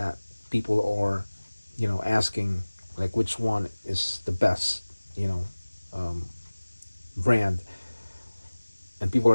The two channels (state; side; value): inverted; both; correlation -1.00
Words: people are, asking, like which one is the best, um, brand, and people